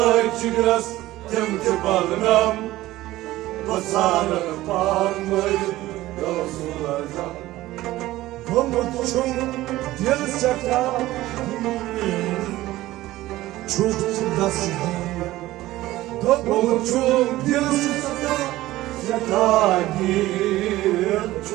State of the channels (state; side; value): quieter; left; 16.6 dB